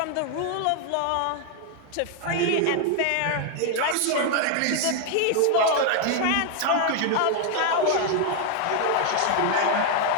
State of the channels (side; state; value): both; different; correlation 0.00